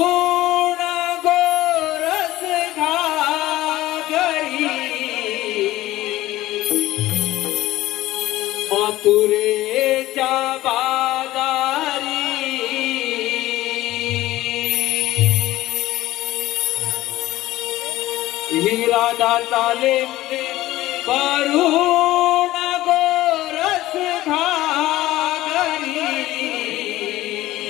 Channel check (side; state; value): right; quieter; 16.2 dB